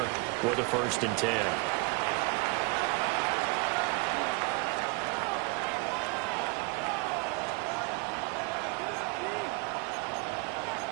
for the 1st and 10.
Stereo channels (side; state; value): left; quieter; 27.7 dB